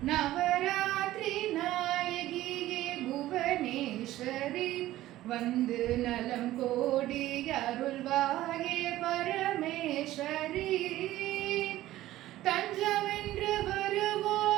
நவராத்திரி நாயகியே புவனேஸ்வரி, வந்து நலம் கோடி அருள்வாயே பரமேஸ்வரி. தஞ்சமென்று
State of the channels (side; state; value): left; quieter; 15.2 dB